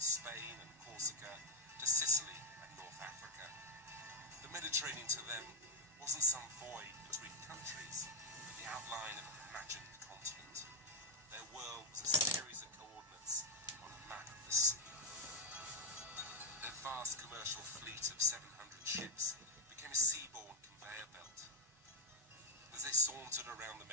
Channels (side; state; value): both; normal; correlation 0.02